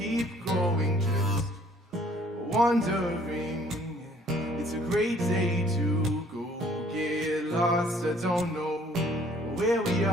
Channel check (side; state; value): both; normal; correlation 0.58